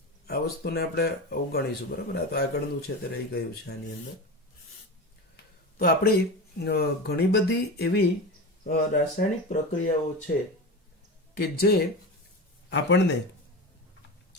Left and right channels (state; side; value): normal; both; correlation 0.25